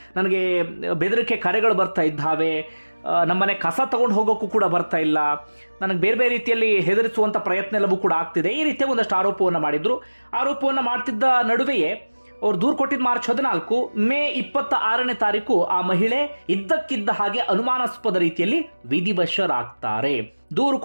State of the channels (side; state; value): both; inverted; correlation -1.00